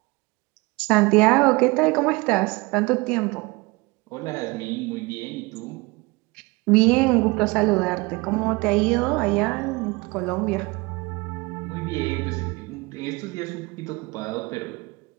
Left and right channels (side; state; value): left; quieter; 24.8 dB